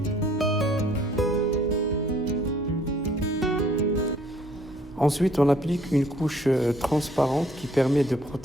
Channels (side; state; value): both; normal; correlation 0.61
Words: Ensuite, on applique une couche transparente qui permet de